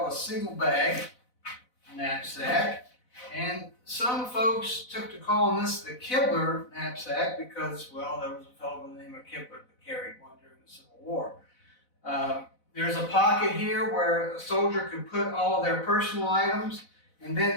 a single bag knapsack. And some folks took to calling this the Kibler knapsack because, well, there was a fellow by the name of Kibler that carried one during the Civil War. There's a pocket here where a soldier could put all of their personal items, and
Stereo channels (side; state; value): right; late; 4.0 ms